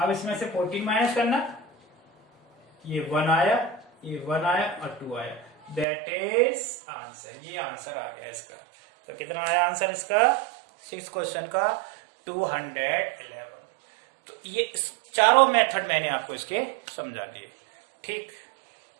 इसमें से 14 माइनस करना, ये 1 आया और 2 आया, दैट इज आंसर, ये आंसर आ गया इसका। तो कितना आया आंसर इसका 6 क्वेश्चन का 211। तो ये चारों मेथड मैंने आपको इसके समझा दिए, ठीक।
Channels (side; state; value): left; drops out; at 5.9 s